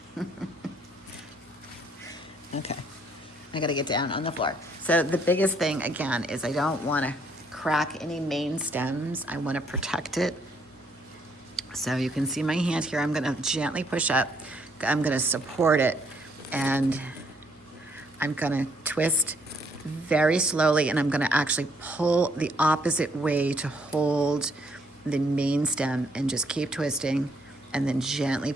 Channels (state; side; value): normal; both; correlation 0.69